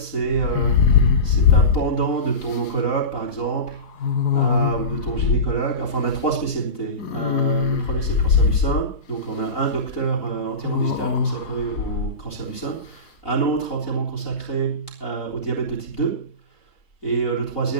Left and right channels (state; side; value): late; right; 4.0 ms